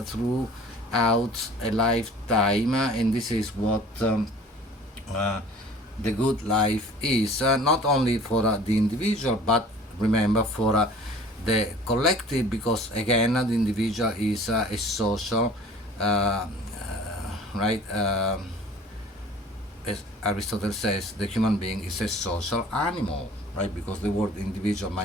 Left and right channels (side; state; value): both; normal; correlation 0.47